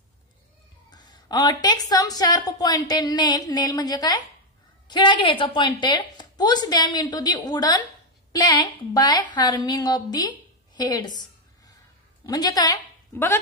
Take some sharp pointed nail म्हणजे काय, खिळा घ्यायचा pointed. Push them into the wooden plank by hammering of the heads. म्हणजे काय बघा,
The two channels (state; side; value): normal; both; correlation 0.03